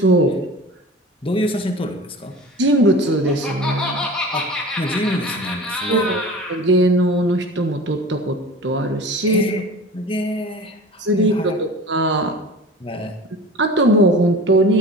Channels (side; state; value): both; normal; correlation 0.38